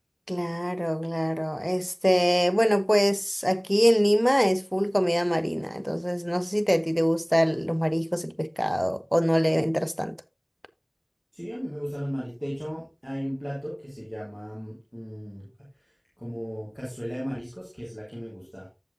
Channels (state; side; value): identical; both; correlation 1.00